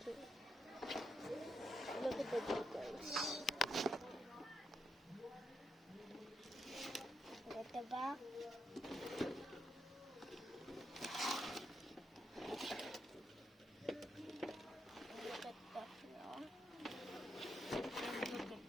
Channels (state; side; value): normal; both; correlation 0.81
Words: Okay. Look at the details. Look at the back.